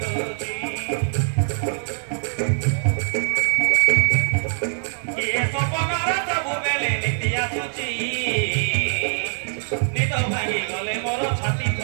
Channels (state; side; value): silent; left; digital silence